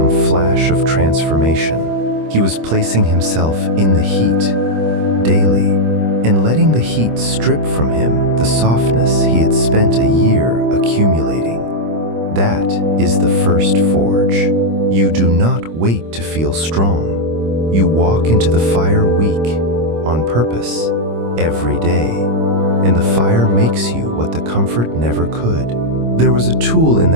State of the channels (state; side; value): late; left; 25 ms